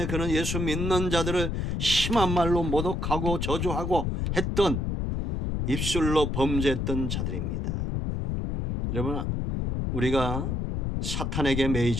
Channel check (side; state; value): left; noise; rumble, 1 dB below the sound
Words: 그는 예수 믿는 자들을 심한 말로 모독하고 저주하고 했던, 입술로 범죄했던 자들입니다. 여러분, 우리가 사탄에게